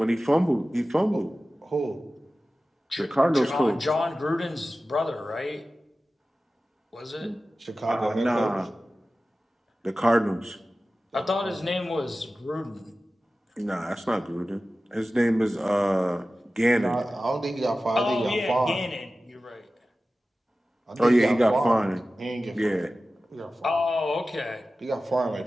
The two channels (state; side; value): normal; both; correlation 0.95